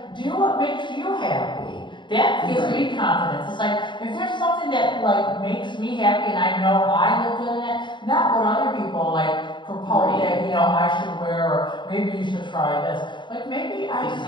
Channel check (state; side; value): late; right; 0.23 ms